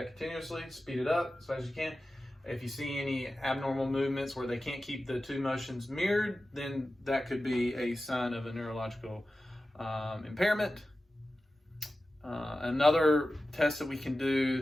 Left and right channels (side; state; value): both; normal; correlation 0.94